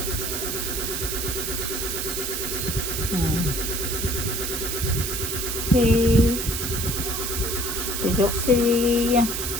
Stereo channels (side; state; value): right; noise; hiss, 2 dB below the sound